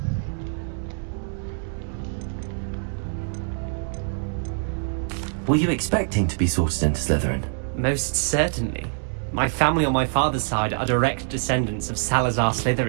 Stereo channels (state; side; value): silent; left; 60 dB below the other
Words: Were you expecting to be sorted into Slytherin? Most certainly. My family on my father's side are direct descendants of Salazar